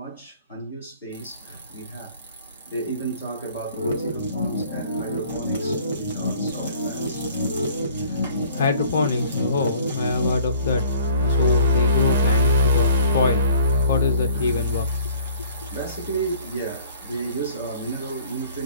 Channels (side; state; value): both; inverted; correlation -0.53